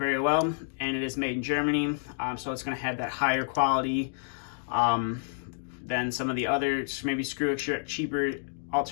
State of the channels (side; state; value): right; silent; digital silence